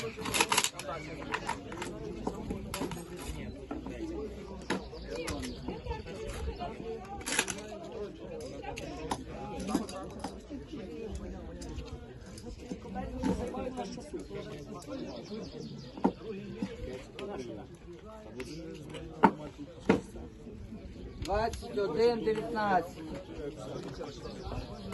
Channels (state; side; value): identical; both; correlation 1.00